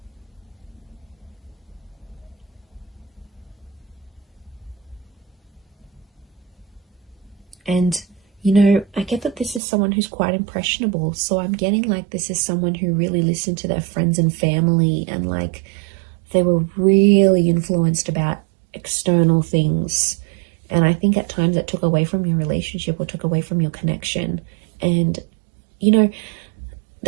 And, you know, I get that this is someone who's quite impressionable. So I'm getting like this is someone who really listened to their friends and family, and like they were really influenced about external things. And I think at times it took away from your relationship or took away from your connection. And, you know,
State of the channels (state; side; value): drops out; left; at 9.6 s